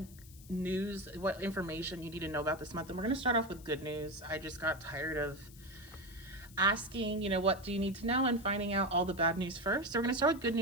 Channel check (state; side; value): noise; left; hiss, 21 dB below the sound